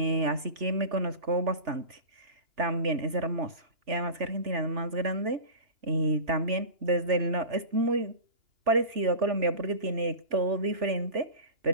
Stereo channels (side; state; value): left; late; 3.4 ms